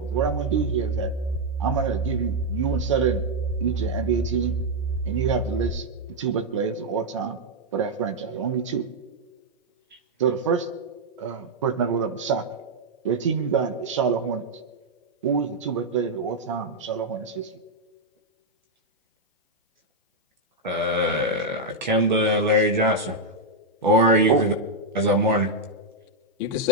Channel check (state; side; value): normal; both; correlation -0.02